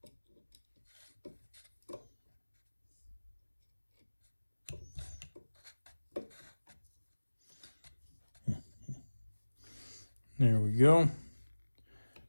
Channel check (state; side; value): inverted; both; correlation -1.00